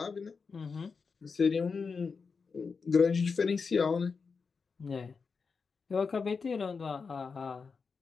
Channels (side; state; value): right; quieter; 5.1 dB